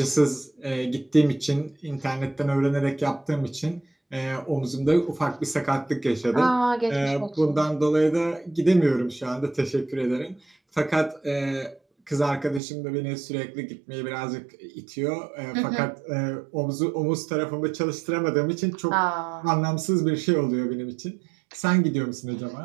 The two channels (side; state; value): left; drops out; at 12.6 s